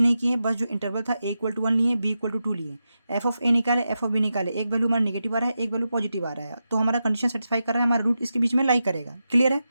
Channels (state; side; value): inverted; both; correlation -0.89